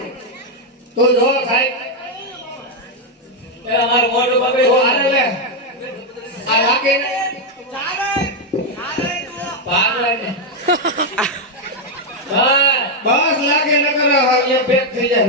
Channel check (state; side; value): normal; both; correlation 0.02